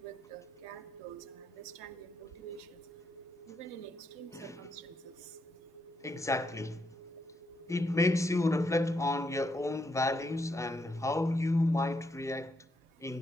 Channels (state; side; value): normal; both; correlation 0.79